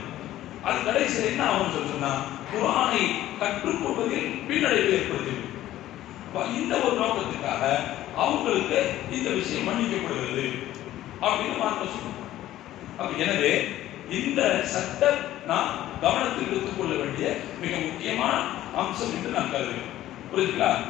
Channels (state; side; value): quieter; right; 13.9 dB